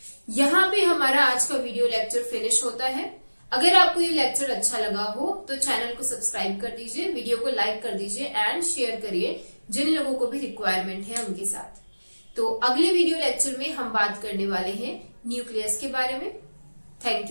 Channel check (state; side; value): inverted; both; correlation -1.00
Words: यहाँ पे हमारा आज का वीडियो लेक्चर फिनिश होता है। अगर आपको ये लेक्चर अच्छा लगा हो तो चैनल को सब्सक्राइब कर दीजिए, वीडियो को लाइक कर दीजिए एंड शेयर करिए जिन लोगों को भी रिक्वायरमेंट है उनके साथ। तो अगले वीडियो लेक्चर में हम बात करने वाले हैं न्यूक्लियस के बारे में। Thank